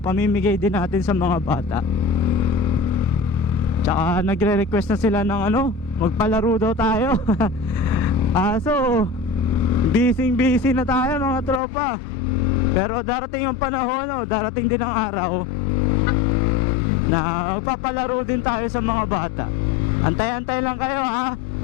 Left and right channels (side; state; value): right; drops out; at 11.6 s